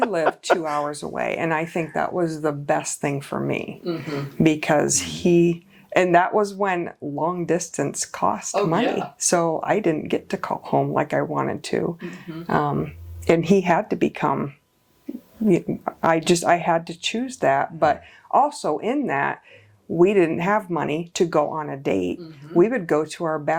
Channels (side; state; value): both; identical; correlation 1.00